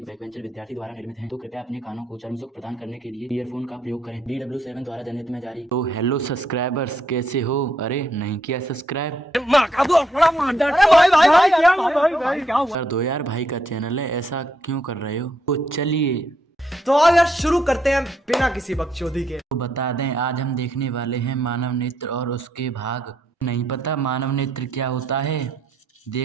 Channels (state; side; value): normal; both; correlation 0.75